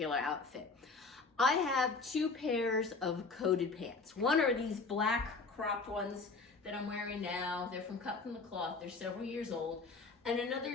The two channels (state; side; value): quieter; right; 4.1 dB